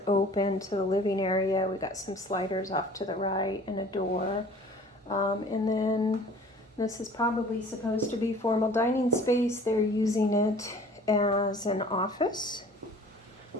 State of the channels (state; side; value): normal; both; correlation 0.48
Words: open to the living area. We got some sliders off to the right and a door. And then this is probably supposed to be formal dining space. They're using it as an office.